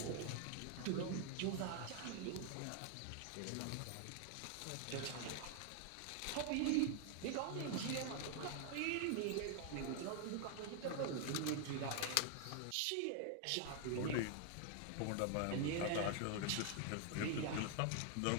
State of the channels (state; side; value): different; both; correlation 0.00